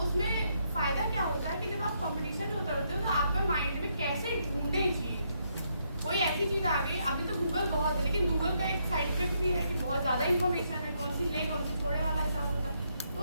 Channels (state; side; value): inverted; both; correlation -0.76